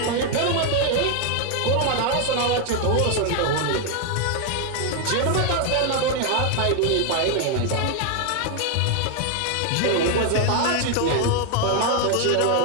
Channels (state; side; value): different; both; correlation 0.00